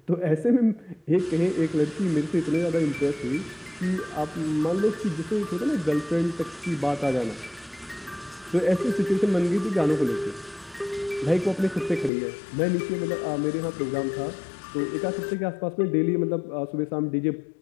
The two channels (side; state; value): right; drops out; at 12.1 s